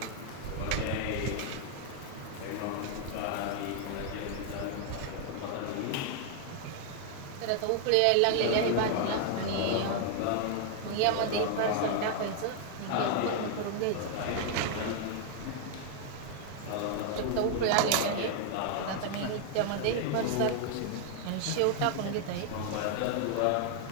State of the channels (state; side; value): different; both; correlation 0.00